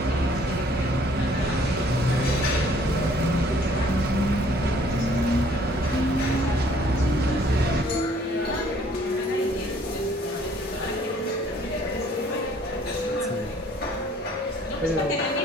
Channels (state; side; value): normal; both; correlation 0.59